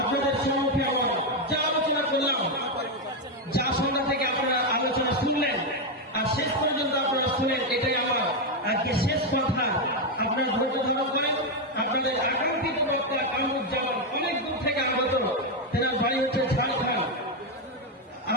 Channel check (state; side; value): normal; both; correlation 0.04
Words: সম্মুখে আমরা যা আলোচনা করলাম যা সন্ধ্যা থেকে আপনারা আলোচনা শুনলেন আর শেষ পর্যন্ত আপনারা শুনেন এটাই আমার আজকে শেষ কথা আপনারা ধৈর্য ধারণ করেন আপনাদের আকাঙ্ক্ষিত বক্তা কামরুজ্জামান অনেক দূর থেকে আগত তেনার বাড়ি হচ্ছে ঝাড়খণ্ড